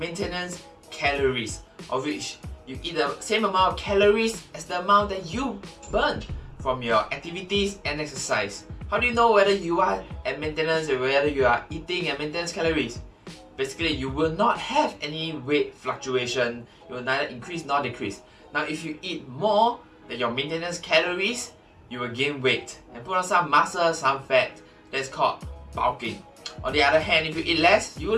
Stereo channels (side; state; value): both; identical; correlation 1.00